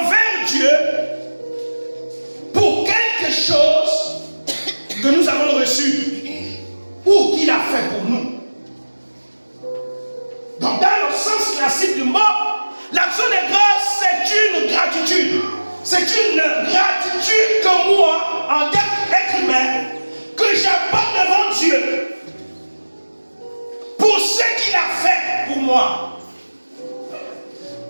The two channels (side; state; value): both; inverted; correlation -1.00